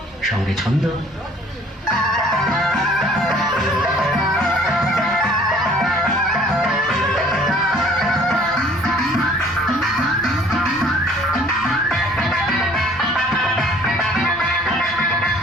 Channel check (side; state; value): both; normal; correlation 0.54